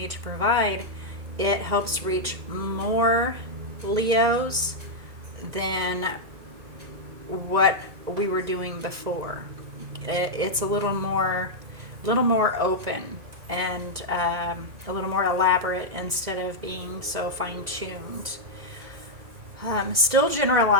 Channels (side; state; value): left; late; 1.9 ms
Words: to provide, it helps reach more Leos than what we were doing before. It's a little more open and a little more elaborate instead of being so fine-tuned. Still